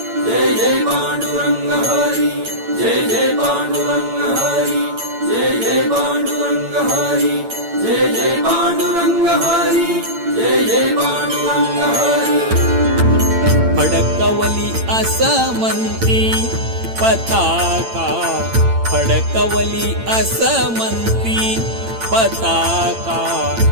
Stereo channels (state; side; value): late; left; 8.8 ms